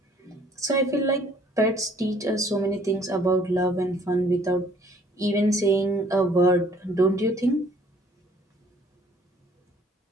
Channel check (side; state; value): both; normal; correlation 0.59